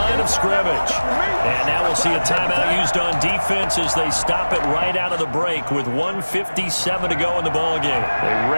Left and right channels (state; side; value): inverted; both; correlation -1.00